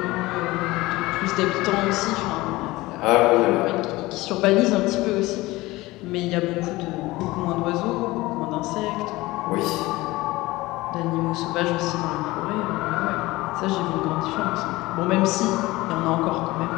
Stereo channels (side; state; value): right; quieter; 19.8 dB